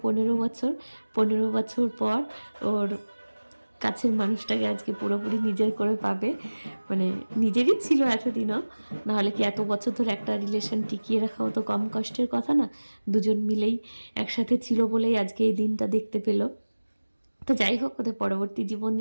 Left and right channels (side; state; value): both; inverted; correlation -1.00